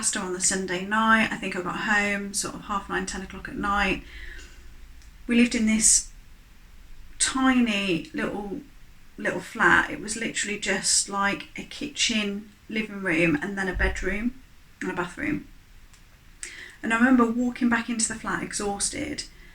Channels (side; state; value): both; identical; correlation 1.00